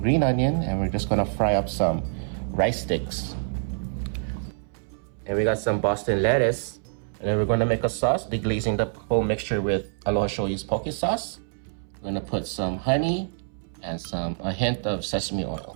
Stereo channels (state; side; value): silent; left; 61 dB below the other